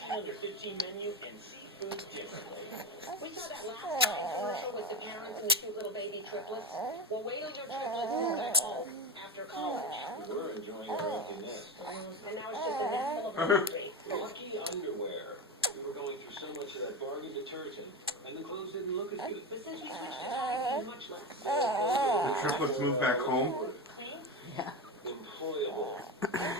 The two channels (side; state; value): both; normal; correlation 0.20